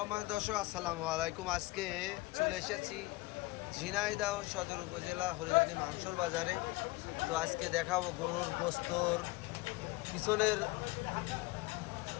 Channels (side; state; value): right; quieter; 21.4 dB